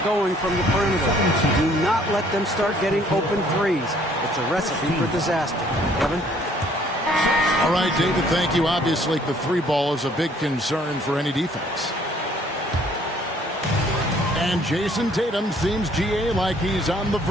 going from the perimeter. Do not let them start getting open threes. It's a recipe for disaster. Kevin? All right, David, thank you. Obviously, the 3 ball is a big concern for any defense. And Jason Tatum seems, GA, like he's on the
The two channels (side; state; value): both; normal; correlation 0.60